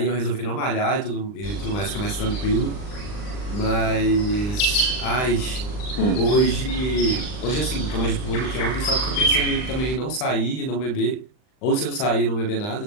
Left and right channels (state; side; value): late; right; 39 ms